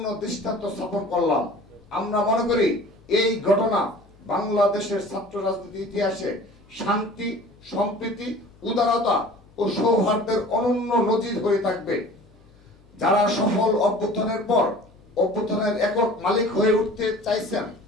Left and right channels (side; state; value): left; noise; hum, 28 dB below the sound